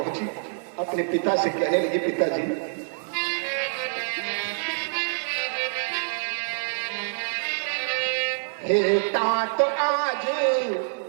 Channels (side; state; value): left; silent; digital silence